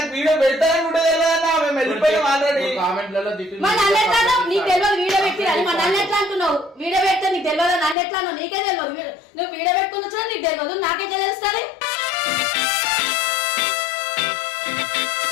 వీడియో పెడతానని కూడా తెలియదన్నా, మేము వెళ్ళిపోయాం ఆల్రెడీ. కామెంట్లలో నీకు తెలియదు వీడియో పెట్టిరని మా నన్ను ఎట్లా అంటున్నావు? వీడియో పెడితే నీకు తెలియదు, నన్ను ఎట్లా అన్నావు? నీకే తెలియదు. నువ్వు వీడియో పెట్టుకున్నా నీకు తెలియదు, నాకెట్లా తెలుస్తుంది?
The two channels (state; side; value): drops out; right; at 8.0 s